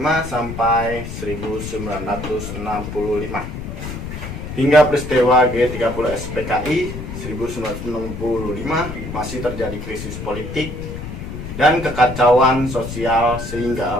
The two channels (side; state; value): left; noise; rumble, 8 dB below the sound